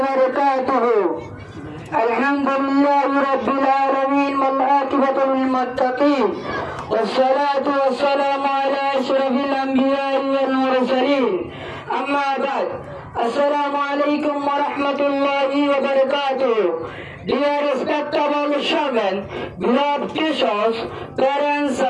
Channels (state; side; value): identical; both; correlation 1.00